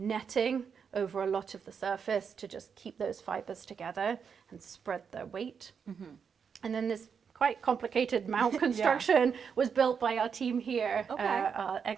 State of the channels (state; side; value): quieter; left; 6.6 dB